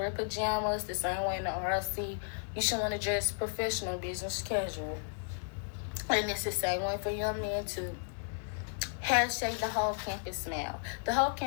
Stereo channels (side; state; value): right; silent; digital silence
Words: pajamas the same way in the RLC. You should want to dress professional, business casual. And it's the same way for young men too. Hashtag the whole campus smile. The whole